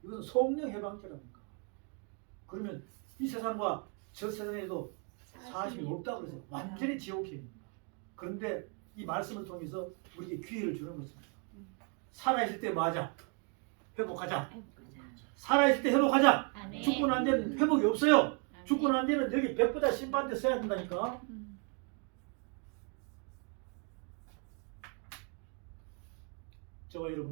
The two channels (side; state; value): left; quieter; 37.1 dB